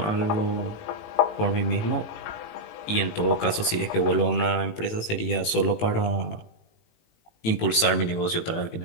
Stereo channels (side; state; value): right; late; 18 ms